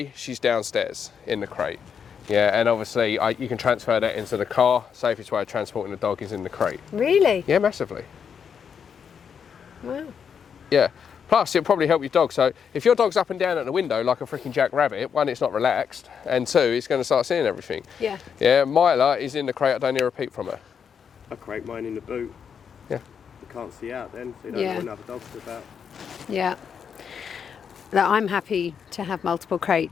she's downstairs in the crate. Yeah, and obviously you can transfer that into the car. Safest way of transporting the dog is in the crate. Really? Yeah, massively. Wow. Yeah. Plus, it'll probably help your dog. So if your dog's up and down at the window like a freaking jackrabbit, 1, it's not relaxed, and 2, it's going to start seeing everything. Yeah. Yeah, Myla is in the crate. I don't hear a peep from her. I crate mine in the boot. Yeah. You can't see out then, so you don't know when other dogs are about. Yeah. that I'm happy to have multiple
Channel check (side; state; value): right; quieter; 7.2 dB